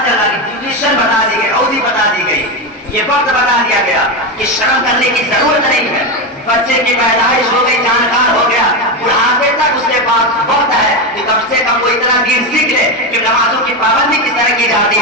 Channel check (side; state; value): both; normal; correlation 0.14